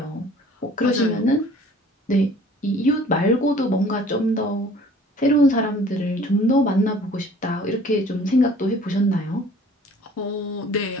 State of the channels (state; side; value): normal; both; correlation 0.51